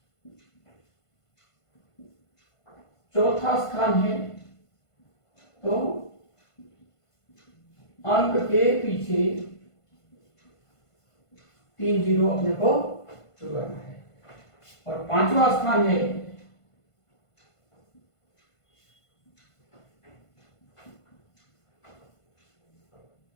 चौथा स्थान है तो अंक के पीछे 3 जीरो अपने को जुड़वाना है। और पांचवा स्थान है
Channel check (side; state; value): right; late; 1.5 ms